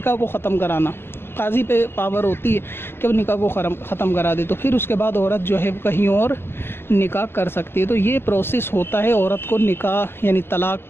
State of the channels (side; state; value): right; late; 0.11 ms